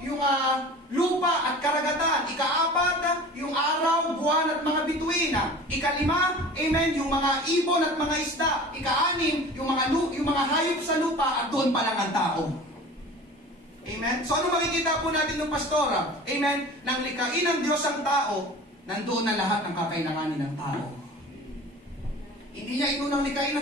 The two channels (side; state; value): both; normal; correlation 0.40